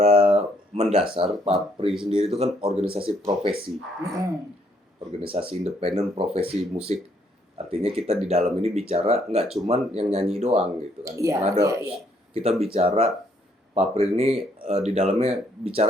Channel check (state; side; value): normal; both; correlation 0.69